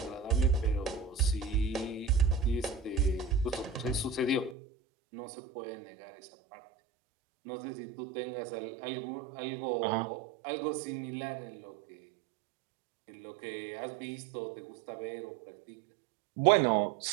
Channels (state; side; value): drops out; left; at 4.5 s